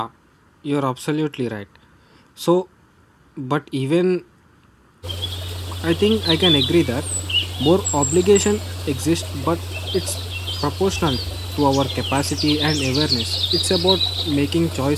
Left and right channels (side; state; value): both; identical; correlation 1.00